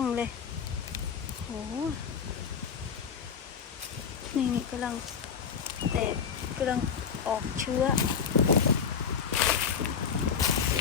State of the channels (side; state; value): right; quieter; 6.8 dB